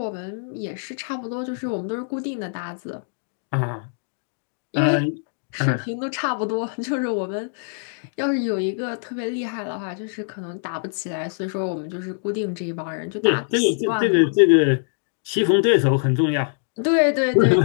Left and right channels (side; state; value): right; silent; digital silence